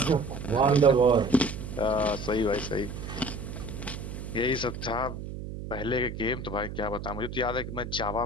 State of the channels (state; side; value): noise; right; hum, 8 dB below the sound